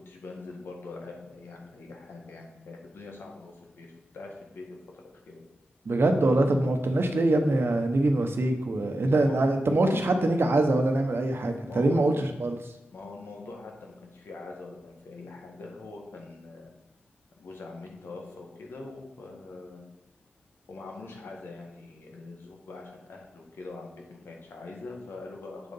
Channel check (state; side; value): normal; both; correlation 0.90